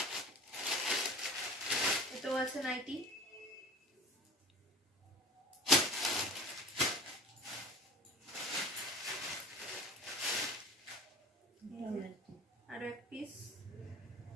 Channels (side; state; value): both; normal; correlation 0.37